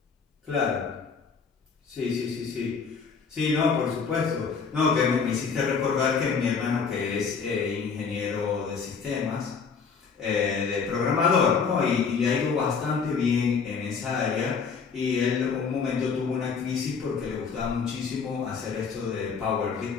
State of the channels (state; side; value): quieter; right; 5.7 dB